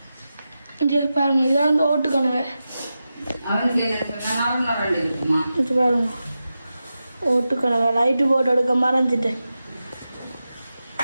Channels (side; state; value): both; inverted; correlation -0.91